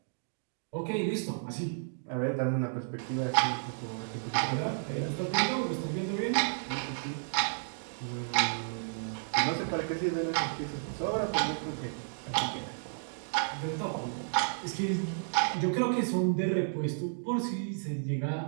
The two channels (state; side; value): silent; left; digital silence